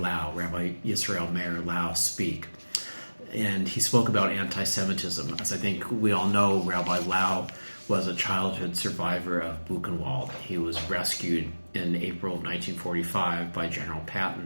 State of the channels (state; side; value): inverted; both; correlation -1.00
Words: Rabbi Yisrael Meir Lau, speak. And he spoke about anti-Semitism. As I think we all know, Rabbi Lau was a childhood survivor of Buchenwald. He was rescued in April of 1945 by General